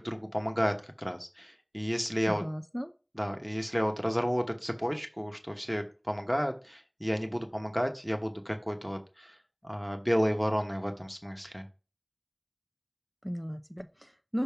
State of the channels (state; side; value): identical; both; correlation 1.00